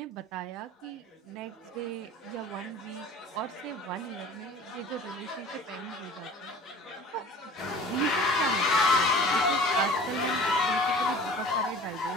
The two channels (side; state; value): both; normal; correlation 0.44